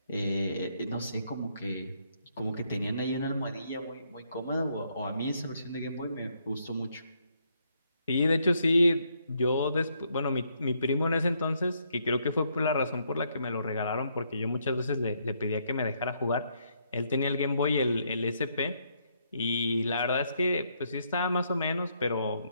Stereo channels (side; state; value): both; inverted; correlation -0.74